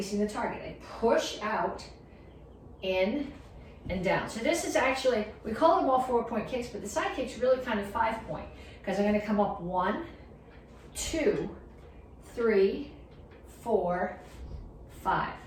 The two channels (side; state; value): both; identical; correlation 1.00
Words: the target. I push out, in, and down. So this is actually, we call them all 4-point kicks, but the side kick's really kind of 5-point, because I'm gonna come up 1, 2, 3, 4, 5.